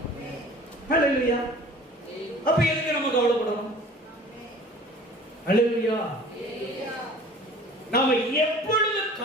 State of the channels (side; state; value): both; normal; correlation 0.46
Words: அல்லேலூயா. அப்ப எதுக்கு நம்ம கவலைப்படணும்? அல்லேலூயா. நாம எப்பொழுது